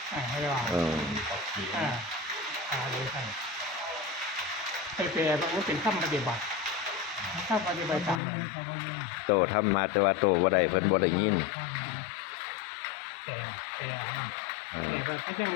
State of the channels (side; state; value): right; drops out; at 8.2 s